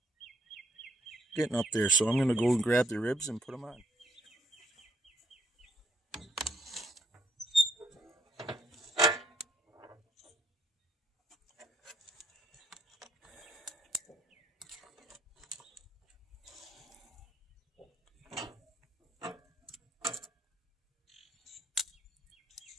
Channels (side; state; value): both; normal; correlation 0.69